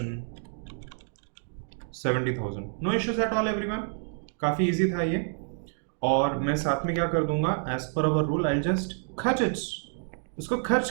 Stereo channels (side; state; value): left; silent; 59 dB below the other